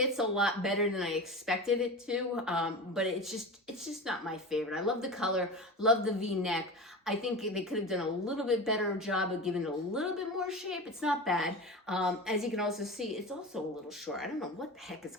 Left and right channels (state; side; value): normal; both; correlation 0.28